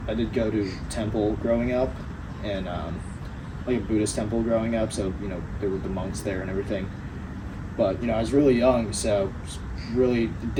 I did go to temple growing up, and like a Buddhist temple growing up, so there were the monks there and everything. But I was really young, so really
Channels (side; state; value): both; identical; correlation 1.00